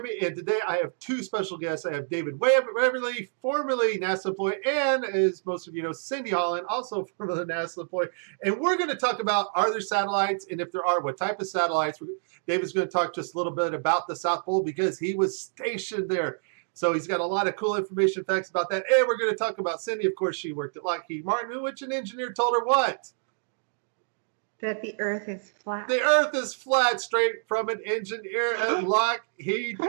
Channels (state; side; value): silent; left; digital silence